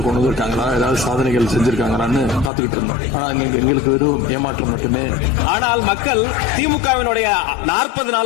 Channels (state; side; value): drops out; right; at 2.5 s